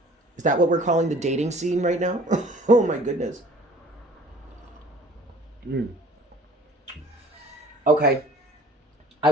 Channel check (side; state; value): both; normal; correlation 0.50